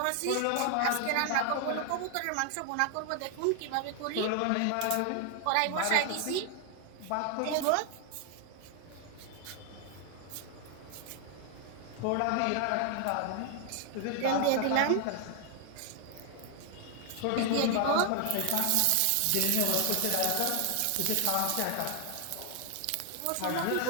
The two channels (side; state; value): both; different; correlation 0.00